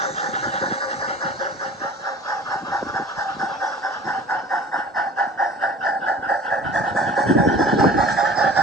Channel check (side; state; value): both; normal; correlation 0.44